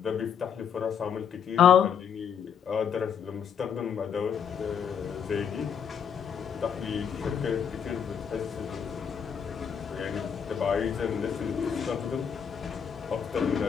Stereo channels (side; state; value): right; quieter; 7.5 dB